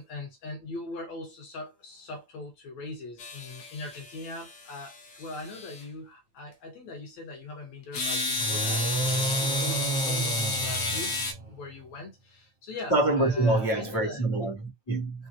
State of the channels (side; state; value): right; late; 8.9 ms